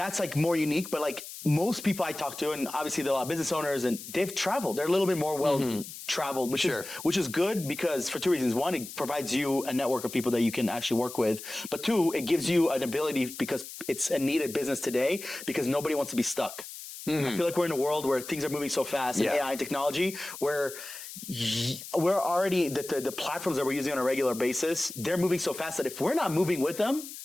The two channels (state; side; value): noise; left; hiss, 12 dB below the sound